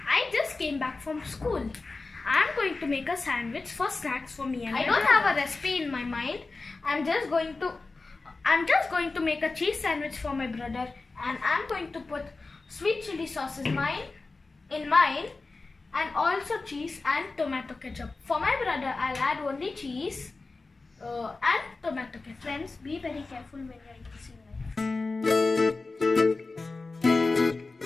I just came back from school. I'm going to make a sandwich for snacks for me and I don't have a recipe in my mind. I'm just going to make a cheese sandwich for my brother, and I'm going to put sweet chili sauce in mine and also cheese and tomato ketchup. For my brother, I'll add only cheese and tomato ketchup. Friends, be very careful when you're using knife.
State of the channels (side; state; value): right; quieter; 3.7 dB